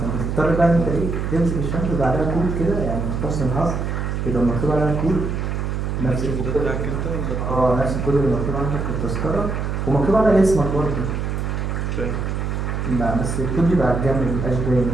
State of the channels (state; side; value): noise; right; hum, 2 dB below the sound